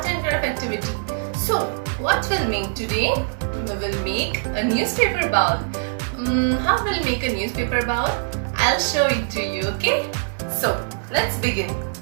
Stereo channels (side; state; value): left; silent; digital silence